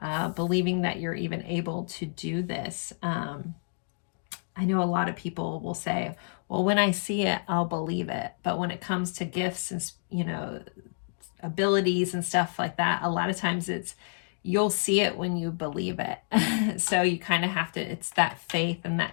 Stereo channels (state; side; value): silent; right; digital silence